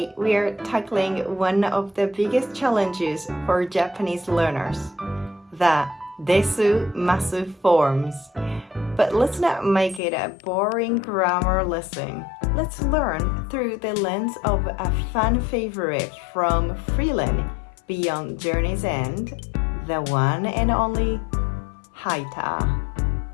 we are tackling one of the biggest challenges for Japanese learners, the Desu-Masu forms. But let's not make it a boring grammar lesson. Let's learn through the lens of a fan favorite from Freiren, Beyond Journey's End, the one and only Heiter.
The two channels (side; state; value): right; drops out; at 10.0 s